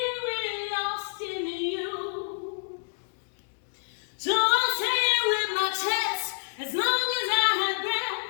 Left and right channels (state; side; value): silent; right; digital silence